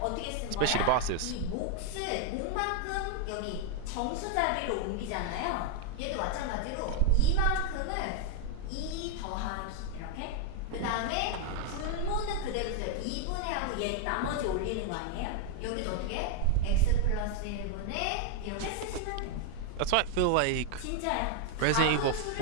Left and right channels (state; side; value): different; both; correlation 0.00